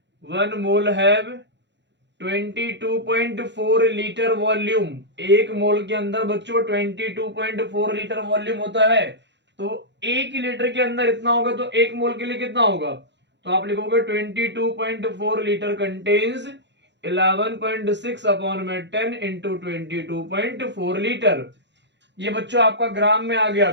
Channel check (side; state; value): left; late; 0.52 ms